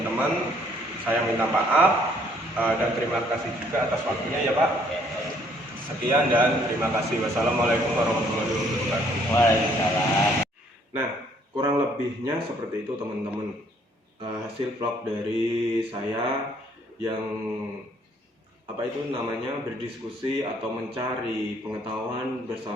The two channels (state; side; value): normal; both; correlation 0.64